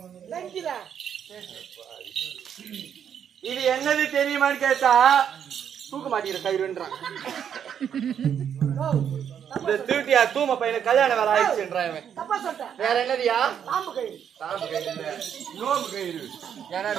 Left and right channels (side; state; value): left; quieter; 8.5 dB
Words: இது என்னது தெரியுமான்னு கேட்டா தூக்க மாட்டேங்கிற கயிறுன்றான். இந்த திருட்டியா தூம பையனுக்கு கல்யாணம் வேலை ஆயிடுச்சுன்றான். வேற என்னதியா? தாம்பு கயிறு. நோம்பு கயிறு. ஏன்னா